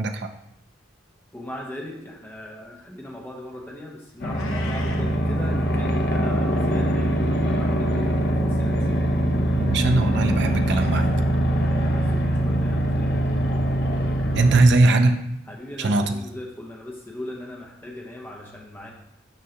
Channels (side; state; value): both; normal; correlation 0.81